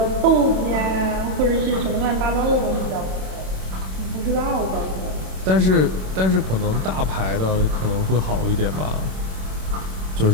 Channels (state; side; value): late; left; 27 ms